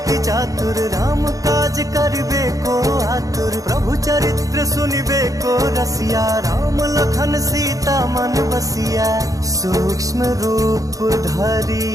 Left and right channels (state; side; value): late; left; 0.17 ms